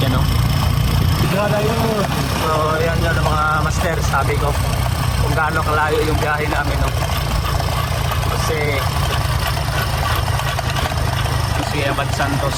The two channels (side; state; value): both; identical; correlation 1.00